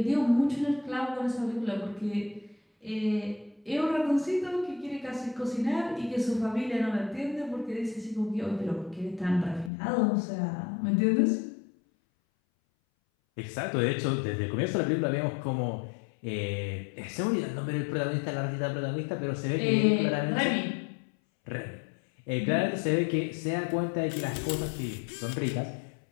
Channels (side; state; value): right; drops out; at 9.7 s